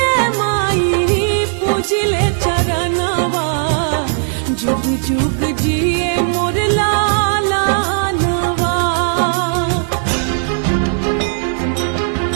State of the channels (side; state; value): left; silent; digital silence